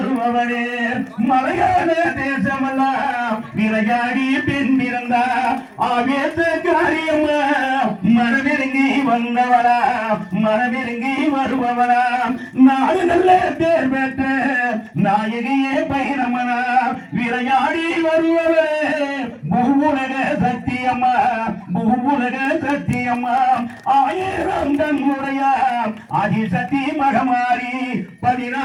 மலையாள தேசமெல்லாம் விளையாடி பெண் பிறந்தா. ஆவேச காரியமா மனமிறங்கி வந்தவளா. மனமிறங்கி வருபவளா. நாடு நல்ல பேர் பெற்ற நாயகியே பைரமனா. விளையாடி வருபவளே. பூவுலக சத்தியம்மா. பூவுலக சத்தியம்மா. 1000 கண்ணுடைய ஆதிசக்தி மகமாரி.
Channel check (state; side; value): identical; both; correlation 1.00